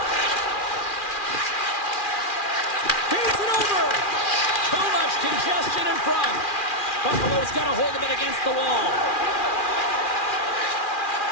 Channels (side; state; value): right; late; 2.4 ms